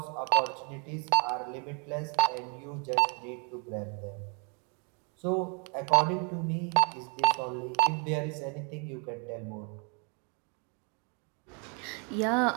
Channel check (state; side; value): quieter; left; 36.9 dB